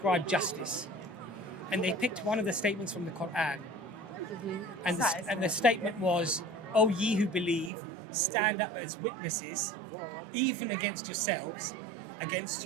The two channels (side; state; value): left; drops out; at 7.7 s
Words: justice. And they picked one of the statements from the Quran. And the statement was, "O ye who believe, stand up as witnesses, even against yourselves, against